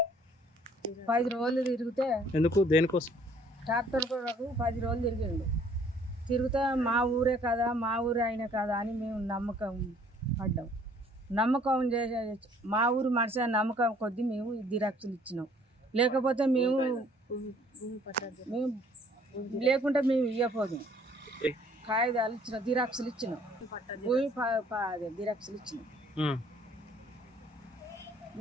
10 రోజులు తిరిగితే ఎందుకు దేనికోసం ట్రాక్టర్ కొరకు 10 రోజులు తిరిగిండు. తిరిగితే మా ఊరే కదా, మా ఊరే అయినా కదా అని మేము నమ్మకం పడ్డాం. నమ్మకం చేసే మా ఊరు మనిషి నమ్మకం కొద్దీ మేము దిరాక్షలు ఇచ్చినాం. లేకపోతే మేము లేకుంటే మేము ఇవ్వపోదు. కాగితాలు ఇచ్చిన దిరాక్షలు ఇచ్చినాం, భూమి దిరాక్షలు ఇచ్చినాం.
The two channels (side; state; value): both; normal; correlation 0.59